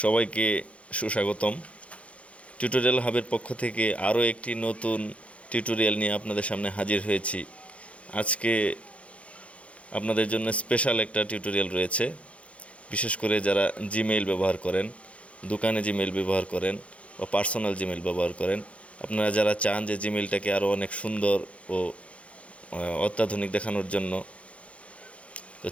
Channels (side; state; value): right; late; 0.063 ms